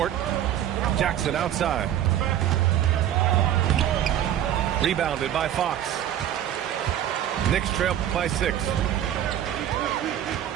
Jackson outside. Rebounded by Fox. Knicks trail by 6.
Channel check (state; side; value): quieter; left; 11.1 dB